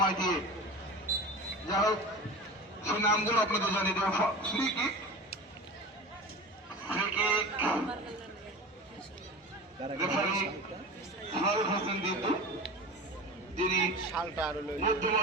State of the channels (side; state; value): both; normal; correlation 0.32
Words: দিয়ে। যাই হোক, সেই নামগুলো আপনাদের জানিয়ে দেওয়া। Free kick, referee Faruk Hossain Ditu, যিনি